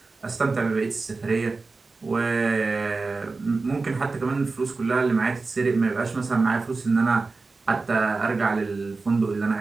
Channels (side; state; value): left; quieter; 3.9 dB